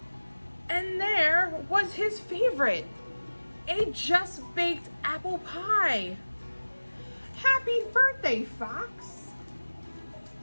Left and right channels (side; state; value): both; inverted; correlation -1.00